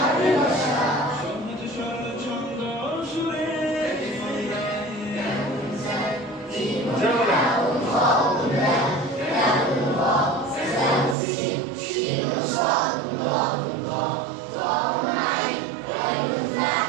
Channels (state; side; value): drops out; left; at 11.2 s